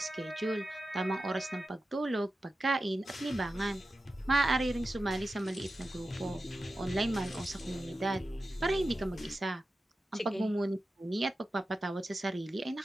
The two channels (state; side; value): normal; both; correlation 0.92